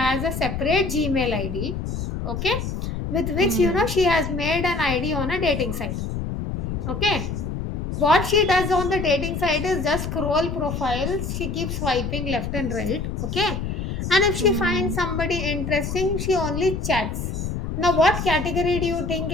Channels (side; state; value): left; noise; rumble, 4 dB below the sound